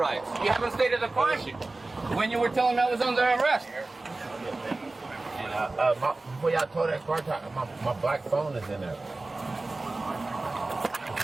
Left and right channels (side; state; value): left; quieter; 3.2 dB